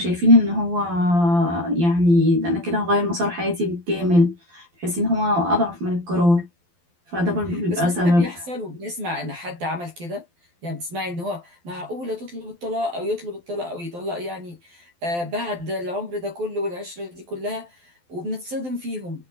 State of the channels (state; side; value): late; left; 12 ms